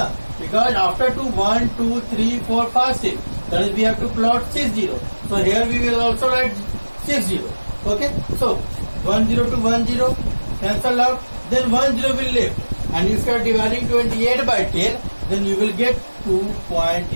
Because after 2, 1, 2, 3, 4, 5, 6. That is, we have to plot 6 0. So here we will also write 6 0. Okay. So 1 0 to 1 0 cancel out. Then 1 0 will left. And if you are dividing 28 by 10, then you will get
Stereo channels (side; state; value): both; inverted; correlation -1.00